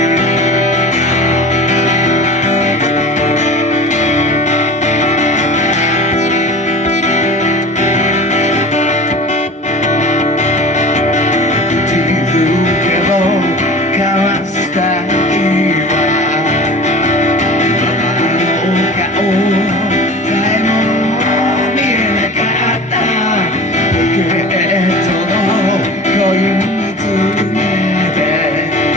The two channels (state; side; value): normal; both; correlation 0.37